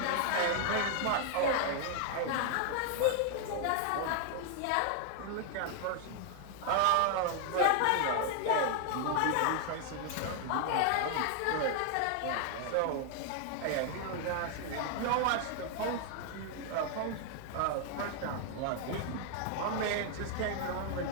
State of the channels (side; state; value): both; different; correlation 0.00